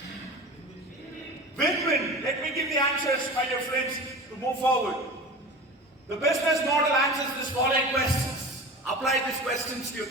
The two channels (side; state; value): both; normal; correlation 0.34